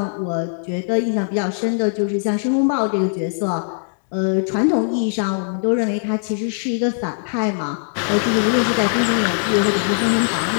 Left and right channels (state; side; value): silent; right; digital silence